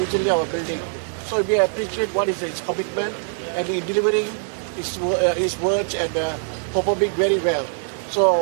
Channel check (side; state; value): left; silent; digital silence